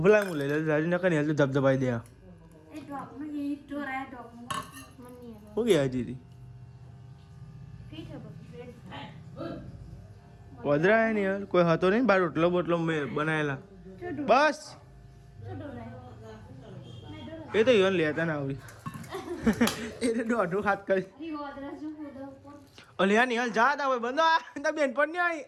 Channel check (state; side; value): identical; both; correlation 1.00